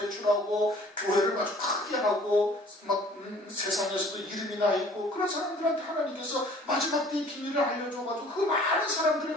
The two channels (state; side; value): normal; both; correlation 0.52